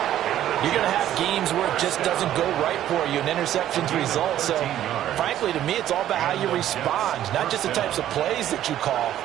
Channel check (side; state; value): left; quieter; 12.0 dB